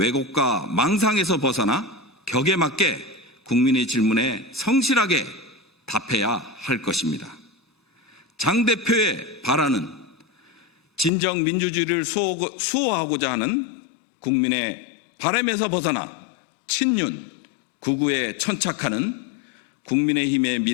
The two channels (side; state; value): right; drops out; at 11.1 s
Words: 망상에서 벗어나 격에 맞게 국민의 질문에 성실하게 답해야 할 것입니다. 장 대표의 발언은 진정 민주주의를 수호하고자 하는 국민의 바람에서 벗어나 친윤, 극우에 천착하는 국민의힘의